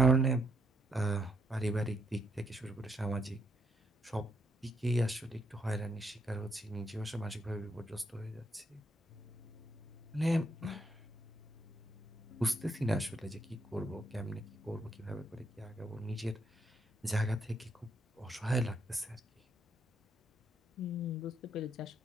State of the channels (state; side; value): normal; both; correlation 0.75